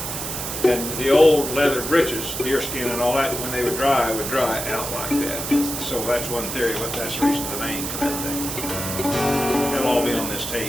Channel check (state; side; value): noise; right; hiss, 5 dB below the sound